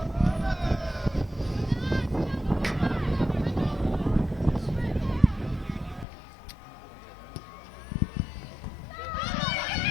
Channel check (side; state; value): right; drops out; at 6.1 s